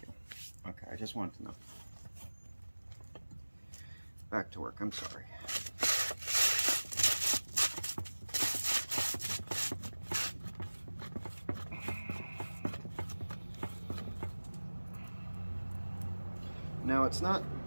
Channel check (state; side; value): inverted; both; correlation -1.00